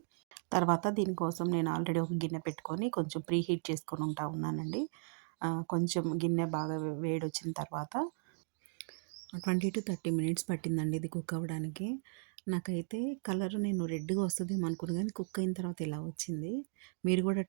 తర్వాత దీనికోసం నేను ఆల్రెడీ ఒక గిన్నె పెట్టుకొని కొంచెం ప్రీ హీట్ చేసుకొని ఉంటా ఉన్నానండి. కొంచెం గిన్నె బాగా వేడొచ్చిన తర్వాత 20-30 మినిట్స్ పట్టిందండి ఇది కుక్ అవ్వడానికి. నాకైతే కలర్ నేను రెడ్‌గా వస్తదేమో అనుకున్నా గానీ కుక్ అయిన తర్వాత ఇలా వచ్చింది. మీరు గూడా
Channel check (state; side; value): silent; left; digital silence